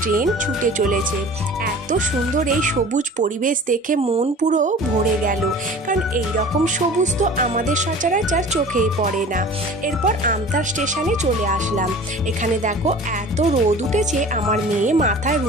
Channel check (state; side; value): normal; both; correlation 0.42